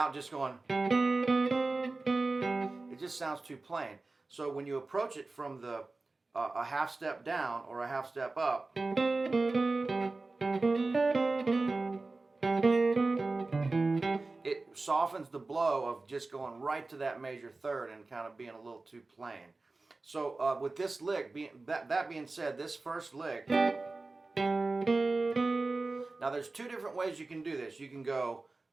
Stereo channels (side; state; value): left; quieter; 3.4 dB